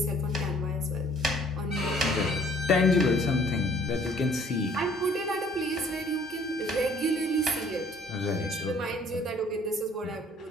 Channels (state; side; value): normal; both; correlation 0.57